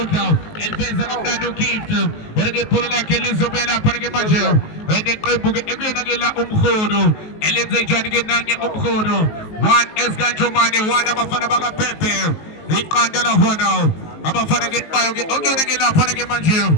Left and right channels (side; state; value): right; late; 19 ms